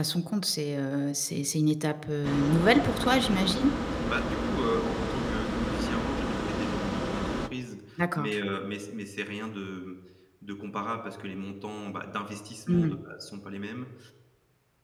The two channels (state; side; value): identical; both; correlation 1.00